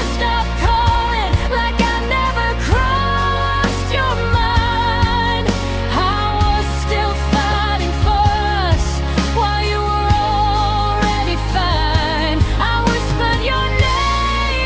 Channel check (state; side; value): identical; both; correlation 1.00